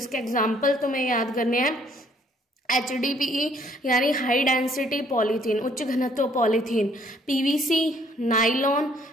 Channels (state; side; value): normal; both; correlation 0.63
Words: एग्जाम्पल तुम्हें याद करने हैं, HDPE यानी हाई डेंसिटी पॉलीथीन, उच्च घनत्व पॉलीथीन, PVC, नाइलॉन